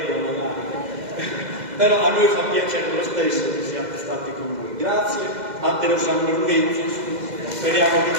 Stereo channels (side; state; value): left; late; 2.0 ms